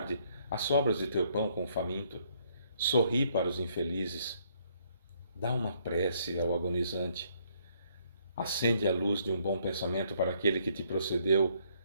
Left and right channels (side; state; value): both; inverted; correlation -0.68